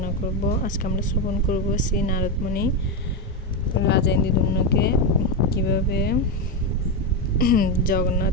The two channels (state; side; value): normal; both; correlation 0.10